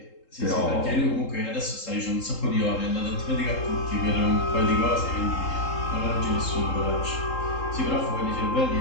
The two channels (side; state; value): right; late; 3.8 ms